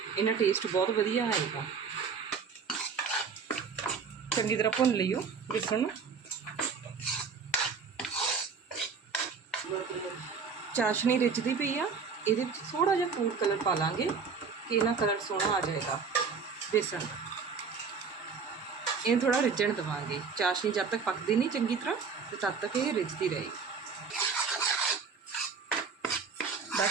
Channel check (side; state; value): left; quieter; 5.5 dB